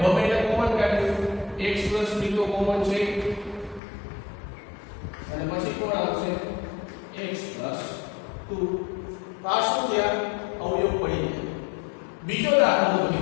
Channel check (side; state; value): right; drops out; at 3.8 s